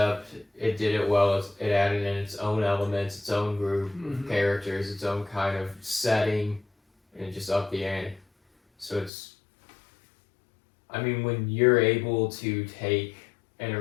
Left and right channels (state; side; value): drops out; right; at 9.1 s